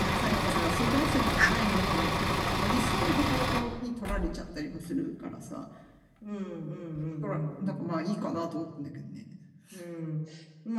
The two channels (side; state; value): both; identical; correlation 1.00